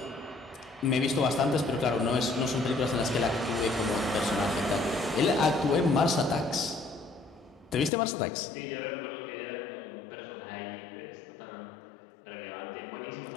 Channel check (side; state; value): right; drops out; at 7.9 s